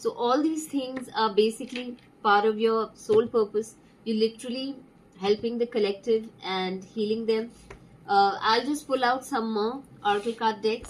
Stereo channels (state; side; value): identical; both; correlation 1.00